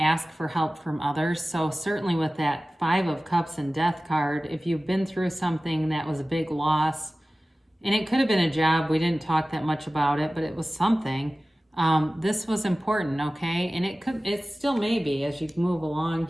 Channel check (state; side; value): normal; both; correlation 0.96